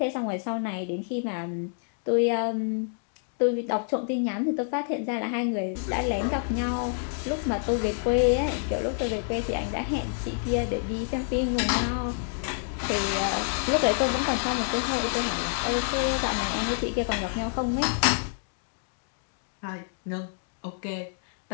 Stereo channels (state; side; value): silent; right; digital silence